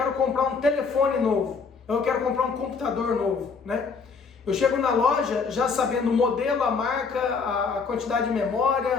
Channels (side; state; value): right; quieter; 5.1 dB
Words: comprar um telefone novo, eu quero comprar um computador novo, né? Eu chego na loja já sabendo o modelo, a marca, a quantidade de